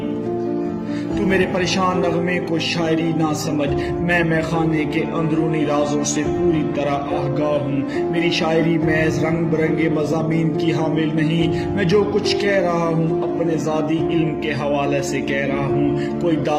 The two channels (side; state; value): both; identical; correlation 1.00